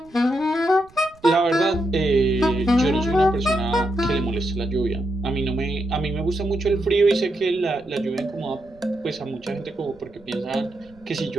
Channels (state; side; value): noise; right; rumble, 26 dB below the sound